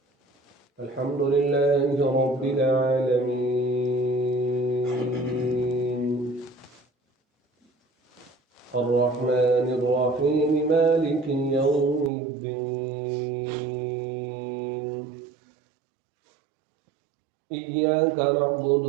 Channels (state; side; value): drops out; left; at 12.1 s